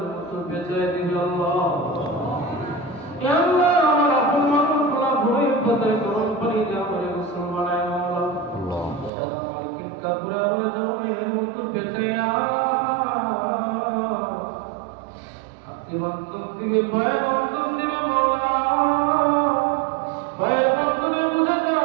মতো বেচায় দিবে আল্লাহ। আল্লাহ, আমার আপন মানুষগুলা ভয়ে পাতায় গরম পানি দিয়ে আমার গোসল বানায় মওলা। সাদা মার্কিন কাপড়ে আমার জনমের মতো বেচাইয়া হাতে বন্ধন দিবে, পায়ে বন্ধন দিবে মওলা। পায়ের বন্ধনে বুঝে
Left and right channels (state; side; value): drops out; left; at 9.1 s